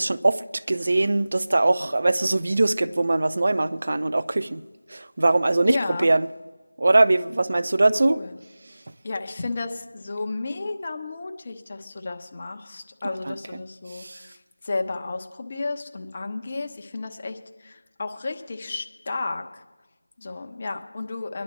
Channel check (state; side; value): inverted; both; correlation -0.98